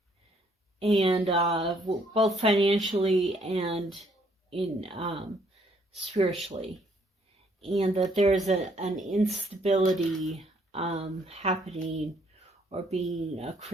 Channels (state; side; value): normal; both; correlation 0.67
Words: And both financially and in spiritually. And that there's an instability happening or being